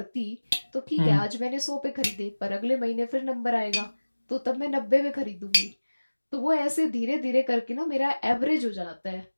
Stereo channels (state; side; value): inverted; both; correlation -1.00